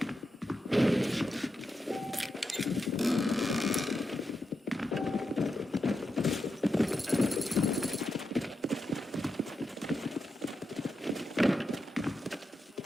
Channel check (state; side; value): normal; both; correlation 0.87